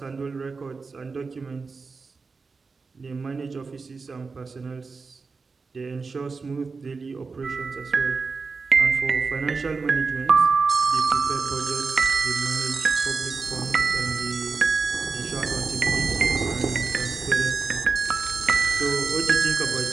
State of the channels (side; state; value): left; quieter; 4.5 dB